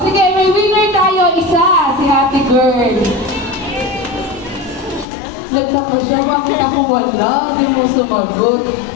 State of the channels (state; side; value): drops out; right; at 5.1 s